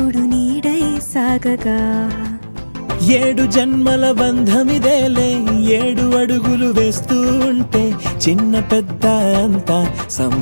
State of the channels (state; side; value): inverted; both; correlation -1.00